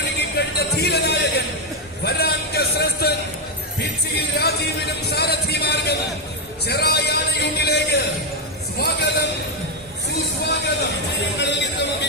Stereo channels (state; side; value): normal; both; correlation 0.03